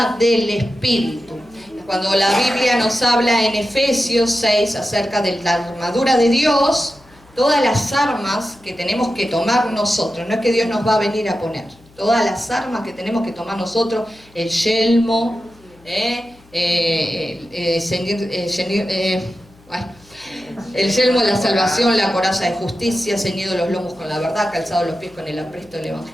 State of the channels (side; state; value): left; noise; hum, 28 dB below the sound